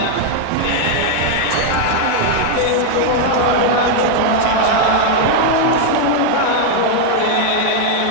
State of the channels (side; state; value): both; different; correlation 0.00